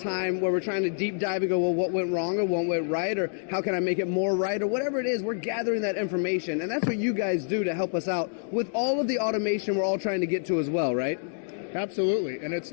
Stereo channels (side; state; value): right; silent; digital silence